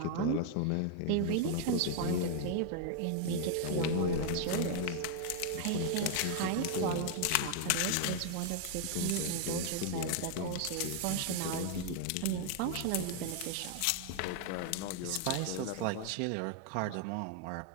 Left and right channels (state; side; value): different; both; correlation 0.00